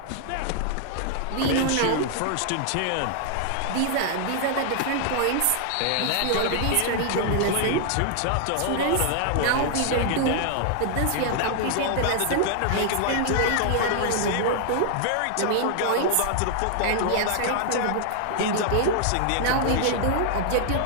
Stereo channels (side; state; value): both; different; correlation 0.00